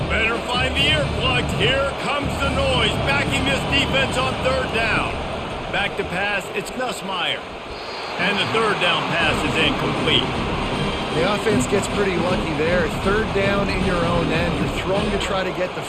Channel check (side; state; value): both; identical; correlation 1.00